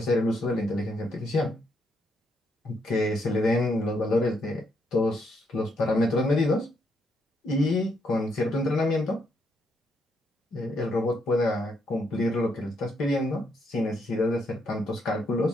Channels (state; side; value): normal; both; correlation 0.76